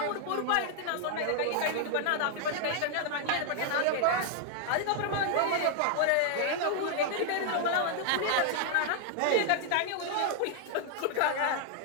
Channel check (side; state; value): both; different; correlation 0.00